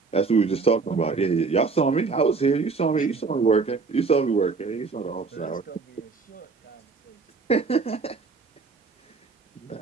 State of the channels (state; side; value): quieter; left; 4.6 dB